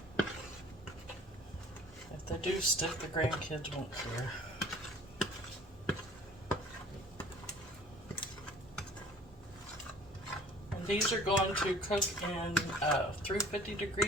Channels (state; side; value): normal; both; correlation 0.50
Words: If they do stick, the grandkids won't care. And these are going to cook in a